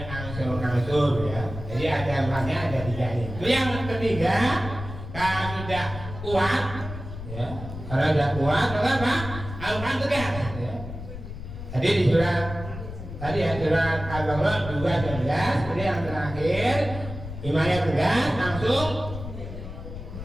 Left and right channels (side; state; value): left; noise; rumble, 10 dB below the sound